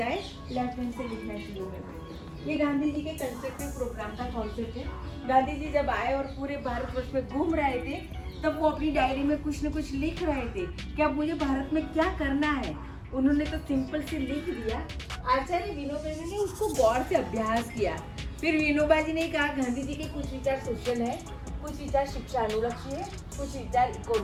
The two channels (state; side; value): identical; both; correlation 1.00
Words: लेफ्ट हैंड से लिखना शुरू करते थे। ये गांधी जी के कंस्ट्रक्टिव प्रोग्राम का कॉन्सेप्ट है। गांधी जी जब आए और पूरे भारतवर्ष में घूम रहे थे, तब वो अपनी डायरी में कुछ न कुछ लिख रहे थे कि अब मुझे भारत में क्या करना है। उन्होंने तो सिंपल से लिख दिया। आचार्य विनोबा जी ने उसको गौर से अभ्यास किया। फिर विनोबा जी ने कहा गांधी जी के कुछ विचार सोशल है, कुछ विचार शिक्षा अनुलक्षी है, कुछ विचार